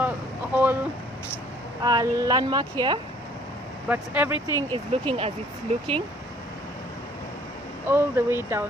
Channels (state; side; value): normal; both; correlation 0.58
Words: landmark here, but everything is looking as it's looking all the way